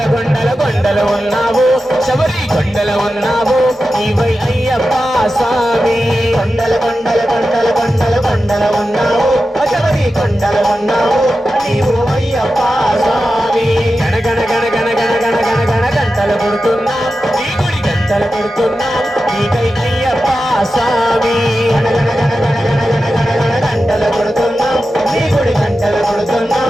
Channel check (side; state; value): both; normal; correlation 0.92